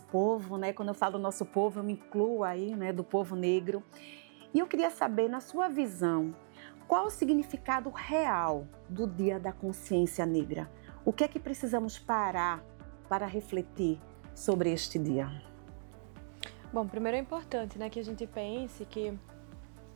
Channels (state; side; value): silent; left; digital silence